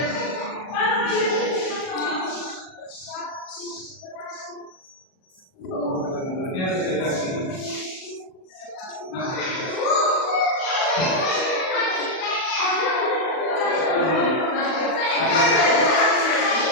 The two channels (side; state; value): right; late; 38 ms